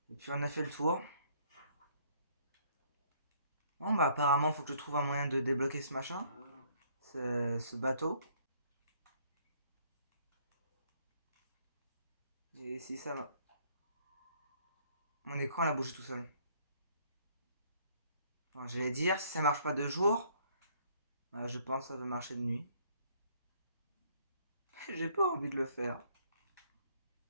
Et puis on a fait le tour. Bon, bah, apparemment, faut que je trouve un moyen de débloquer ce machin. Ce bateau. Et si ça. Mon écran, il a bougé tout seul. Alors, j'allais dire, si ça marche pas de jour, bah, je pense que ça va marcher de nuit. J'ai pas envie de le faire.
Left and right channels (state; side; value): inverted; both; correlation -0.63